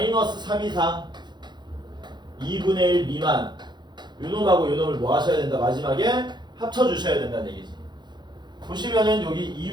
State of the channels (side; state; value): left; late; 0.21 ms